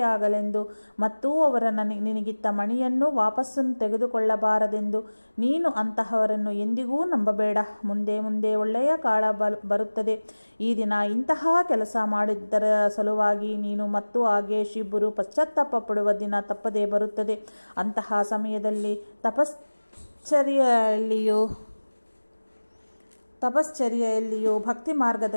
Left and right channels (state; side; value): inverted; both; correlation -1.00